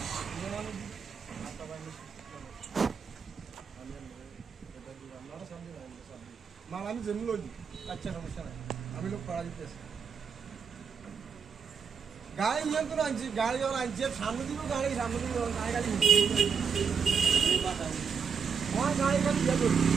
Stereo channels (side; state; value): left; quieter; 6.3 dB